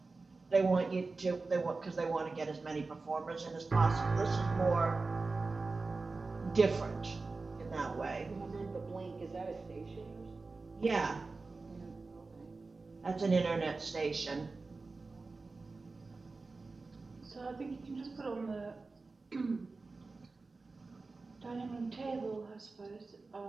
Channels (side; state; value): left; quieter; 3.8 dB